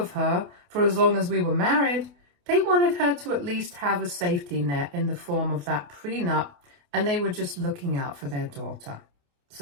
her for as long as we were married, they wanted her to at least have a safety net in the form of that prenup, and they were just looking out for their daughter.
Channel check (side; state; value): left; late; 28 ms